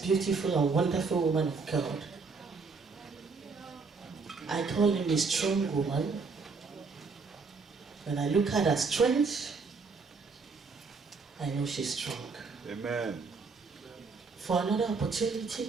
beautiful and wonderful woman of God. I call him a strong woman. When I look at her strength, I know she's strong. Amen. For another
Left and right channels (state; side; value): quieter; left; 4.6 dB